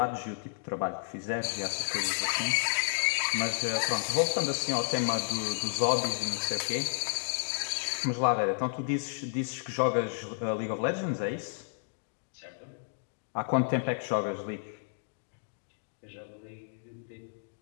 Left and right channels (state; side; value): silent; right; digital silence